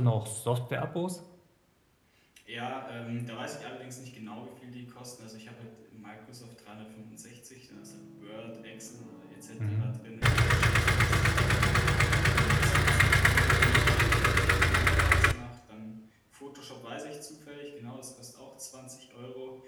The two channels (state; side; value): identical; both; correlation 1.00